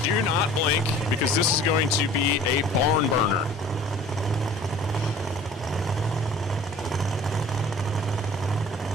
do not blink, because this is going to be a barn burner.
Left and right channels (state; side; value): normal; both; correlation 0.47